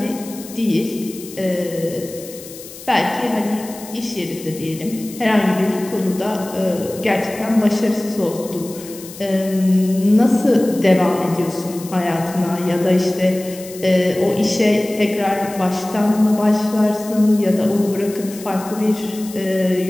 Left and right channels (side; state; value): left; noise; hiss, 16 dB below the sound